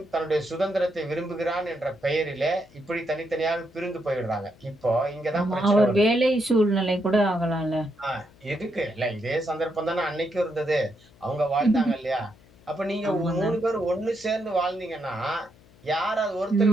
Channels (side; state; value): left; noise; hum, 27 dB below the sound